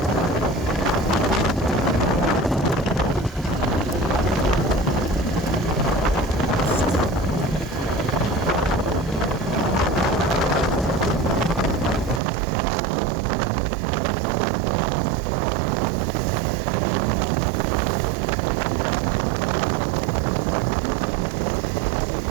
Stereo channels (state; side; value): drops out; left; at 12.2 s